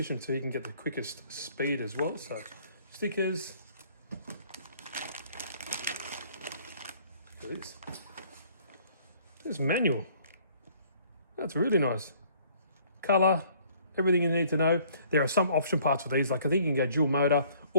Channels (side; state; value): both; inverted; correlation -0.58